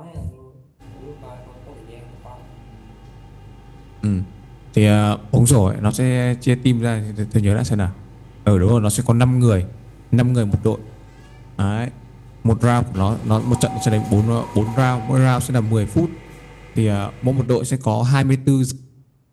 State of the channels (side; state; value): both; identical; correlation 1.00